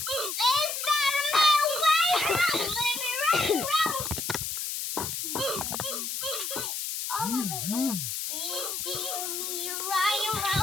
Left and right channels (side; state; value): left; noise; hiss, 3 dB below the sound